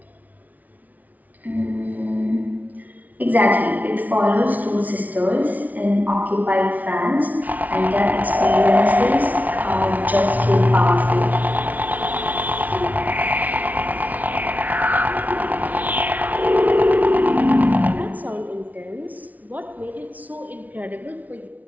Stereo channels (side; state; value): left; late; 0.075 ms